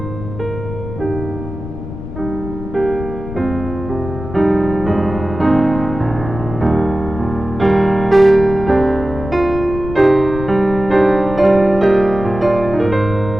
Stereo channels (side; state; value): left; noise; rumble, 9 dB below the sound